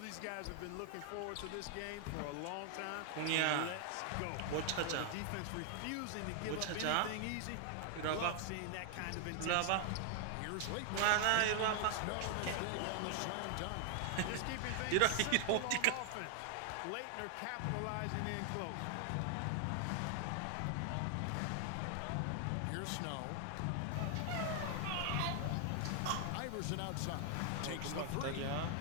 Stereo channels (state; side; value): different; both; correlation 0.00